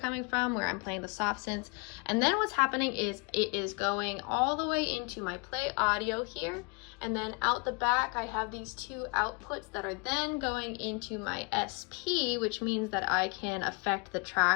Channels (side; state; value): right; quieter; 31.4 dB